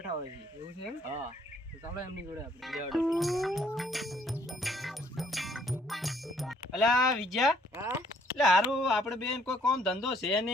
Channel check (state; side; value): normal; both; correlation 0.64